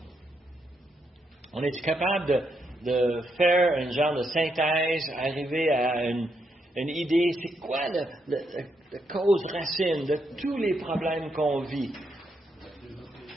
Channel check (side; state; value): both; normal; correlation 0.79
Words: On est capable de faire un genre de synthèse, arriver à une idée, c'est quoi la cause racine de tous les problèmes qu'on vit?